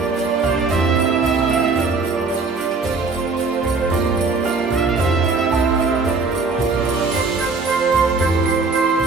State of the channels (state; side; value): quieter; left; 4.2 dB